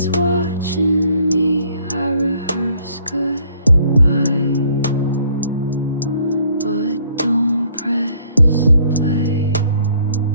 watching me. I rehearse goodbye, but don't press play.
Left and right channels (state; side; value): inverted; both; correlation -0.62